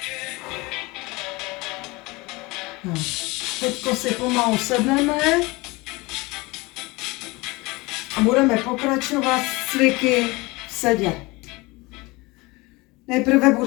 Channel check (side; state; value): right; quieter; 23.6 dB